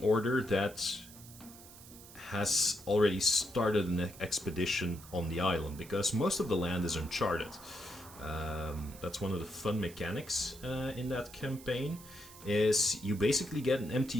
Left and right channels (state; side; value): noise; right; hiss, 18 dB below the sound